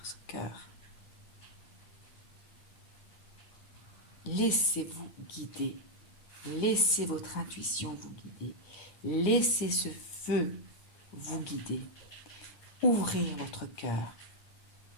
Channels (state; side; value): late; right; 9.7 ms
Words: ce cœur. Laissez-vous guider. Laissez votre intuition vous guider. Laissez ce feu vous guider. Ouvrir votre cœur.